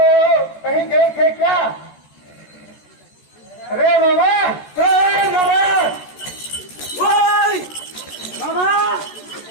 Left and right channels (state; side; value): late; right; 14 ms